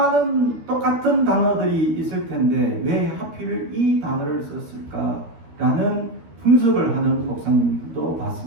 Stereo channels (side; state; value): left; late; 13 ms